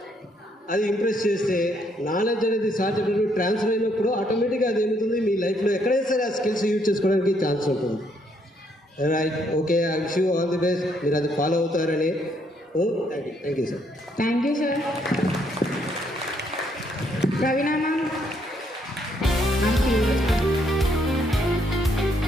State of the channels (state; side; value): normal; both; correlation 0.71